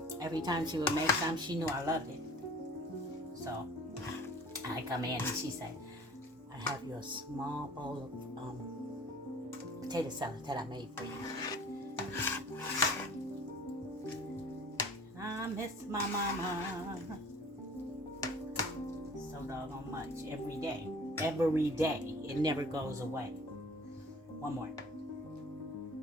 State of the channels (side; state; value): both; normal; correlation 0.47